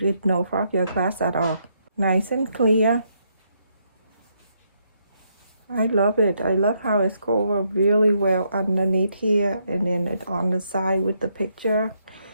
it no fog your glass at all. Nice and clear. I love it. I love how it's covered really well underneath here and then it's on the side with the picture.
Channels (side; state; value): both; inverted; correlation -0.76